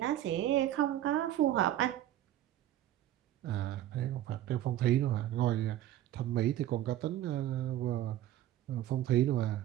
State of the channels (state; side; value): quieter; left; 12.9 dB